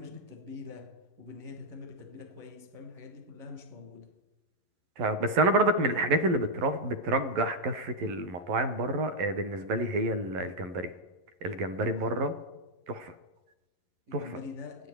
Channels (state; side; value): late; left; 11 ms